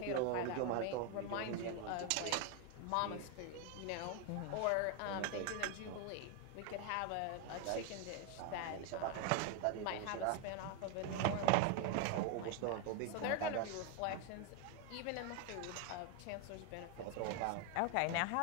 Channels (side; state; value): both; different; correlation 0.01